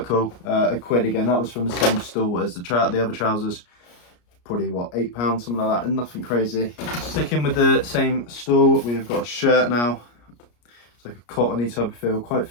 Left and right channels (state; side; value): late; right; 34 ms